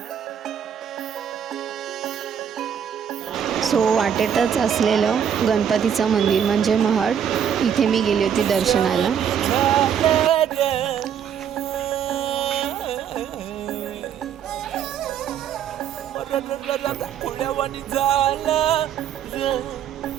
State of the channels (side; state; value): left; quieter; 8.5 dB